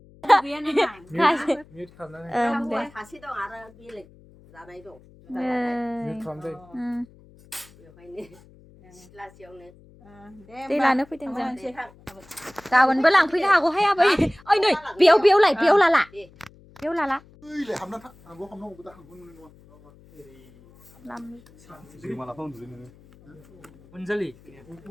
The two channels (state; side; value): noise; left; hum, 25 dB below the sound